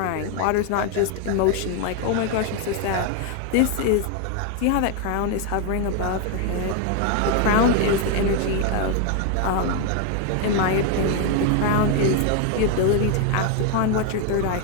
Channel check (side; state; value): both; different; correlation 0.01